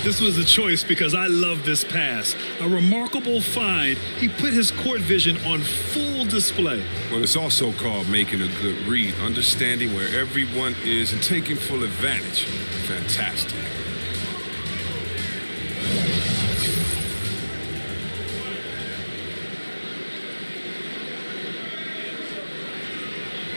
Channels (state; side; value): inverted; both; correlation -1.00